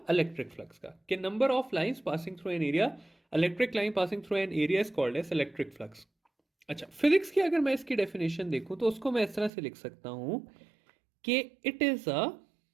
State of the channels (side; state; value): left; drops out; at 9.5 s